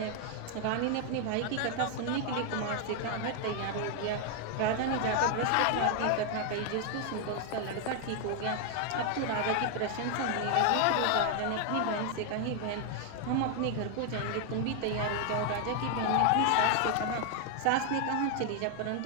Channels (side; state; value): both; different; correlation 0.00